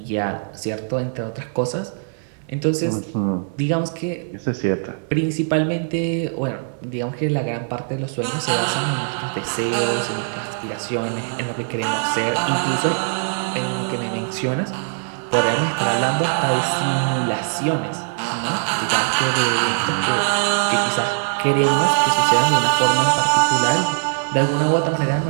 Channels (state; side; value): silent; left; 65 dB below the other